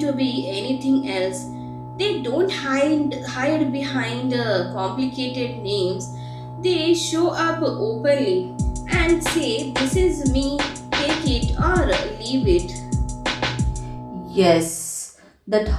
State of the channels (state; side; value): identical; both; correlation 1.00